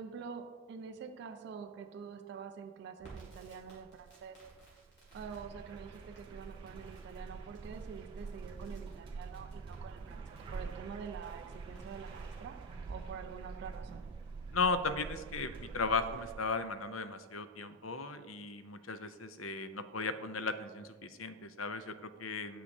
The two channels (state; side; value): normal; both; correlation 0.07